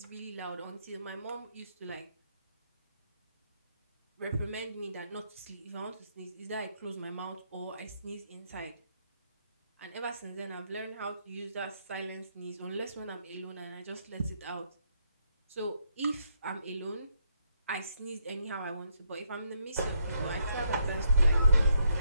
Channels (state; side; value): inverted; both; correlation -0.75